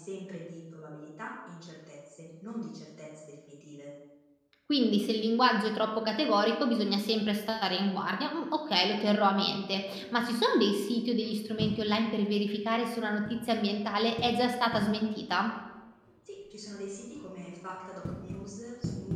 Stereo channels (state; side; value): identical; both; correlation 1.00